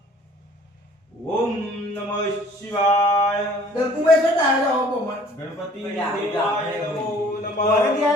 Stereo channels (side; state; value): both; normal; correlation 0.53